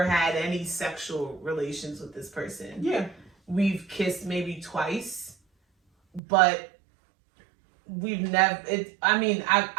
had any sexual relations with this person. Yeah. We've kissed maybe twice, but we've never.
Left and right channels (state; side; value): drops out; left; at 6.2 s